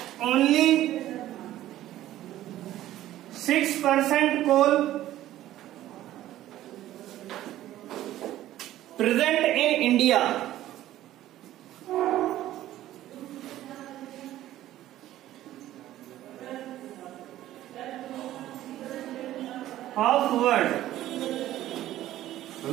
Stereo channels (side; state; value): left; quieter; 13.9 dB